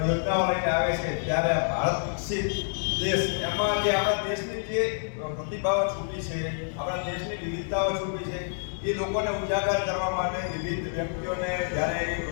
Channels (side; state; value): right; silent; 60 dB below the other